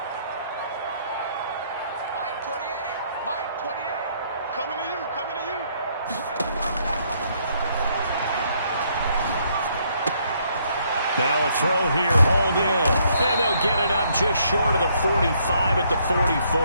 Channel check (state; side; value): inverted; both; correlation -0.69